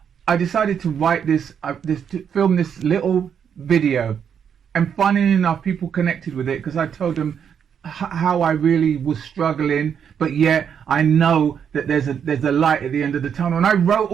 I decided to write to film this little video. And funny enough, people connected with it because I told them how I really was struggling, but yet I know that there's a light at the end of the tunnel. And I wrote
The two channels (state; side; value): quieter; left; 7.8 dB